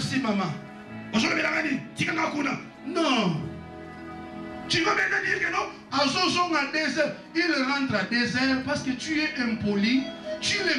maman. Non. Tu vas maintenant dire que non, il rentre à 2 heures parce que tu es impoli, tu les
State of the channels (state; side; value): identical; both; correlation 1.00